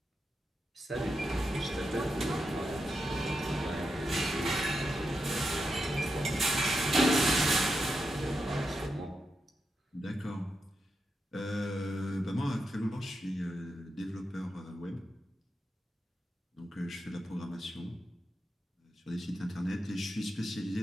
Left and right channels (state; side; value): normal; both; correlation 0.86